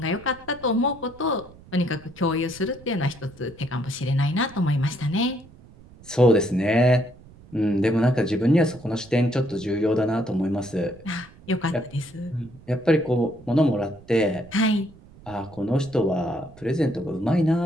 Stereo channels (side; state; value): right; noise; rumble, 22 dB below the sound